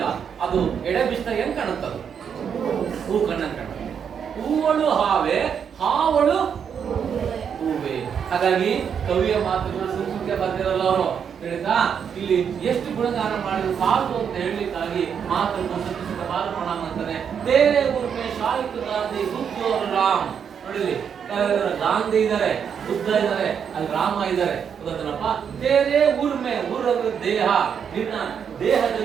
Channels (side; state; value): left; quieter; 7.5 dB